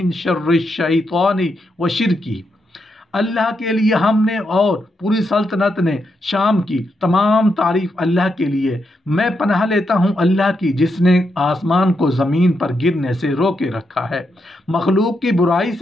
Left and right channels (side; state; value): both; normal; correlation 0.82